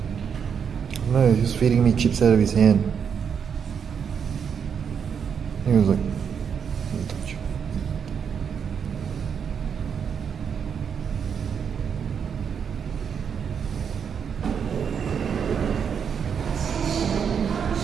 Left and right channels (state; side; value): quieter; left; 7.1 dB